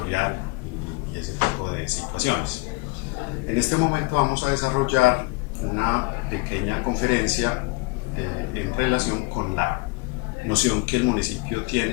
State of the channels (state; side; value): quieter; right; 26.6 dB